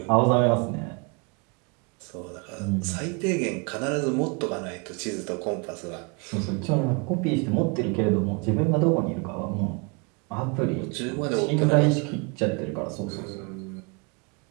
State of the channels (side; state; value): left; quieter; 31.7 dB